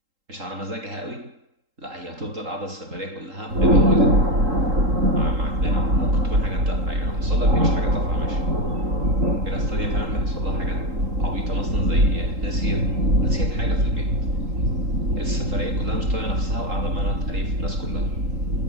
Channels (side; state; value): left; late; 3.8 ms